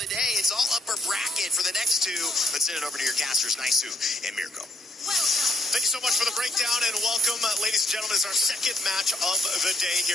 day. It's all upper bracket for the next 2. Let's send it over to your casters, Naisu and Mirko. Thank you so much for the breakdown and welcome, ladies and gentlemen. It's our second match of the day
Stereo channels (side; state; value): both; normal; correlation 0.70